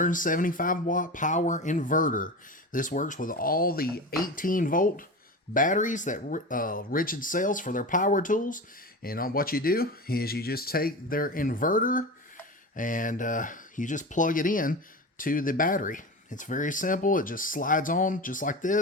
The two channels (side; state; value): both; normal; correlation 0.27